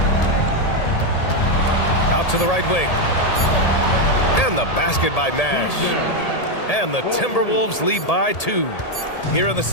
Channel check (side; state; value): right; late; 1.8 ms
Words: Out to the right wing. And the basket by Nash. And the Timberwolves lead by 2. Here in the